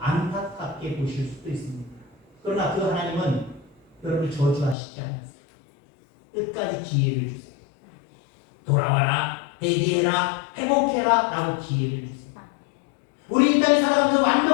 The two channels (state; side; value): drops out; right; at 4.8 s